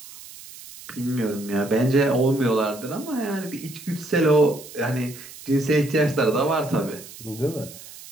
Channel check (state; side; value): noise; right; hiss, 16 dB below the sound